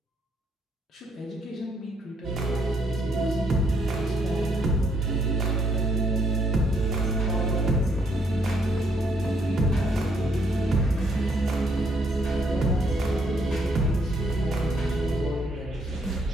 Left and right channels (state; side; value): normal; both; correlation 0.71